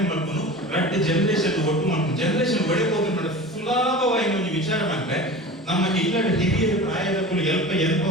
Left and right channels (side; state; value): both; normal; correlation 0.35